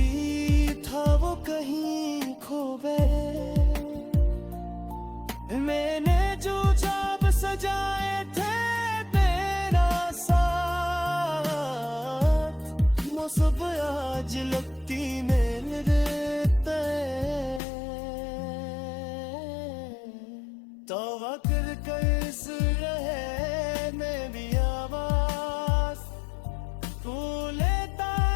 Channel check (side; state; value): right; drops out; at 17.6 s